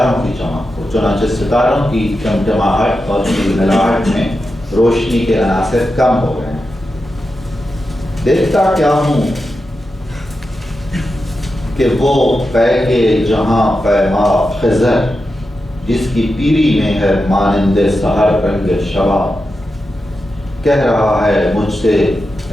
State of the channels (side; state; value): both; normal; correlation 0.90